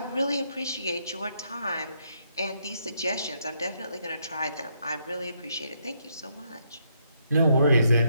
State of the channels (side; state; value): both; inverted; correlation -0.75